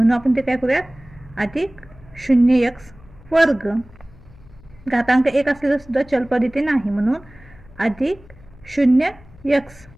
आपण ते काय करूयात अधिक 0x वर्ग, घातांक 1 असलेलं सुद्धा चलपद इथे नाही, म्हणून अधिक 0x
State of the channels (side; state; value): left; noise; hum, 23 dB below the sound